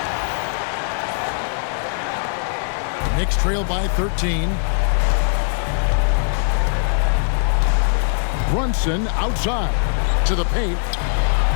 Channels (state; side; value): silent; right; 65 dB below the other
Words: Knicks trail by 13. Brunson outside to the paint.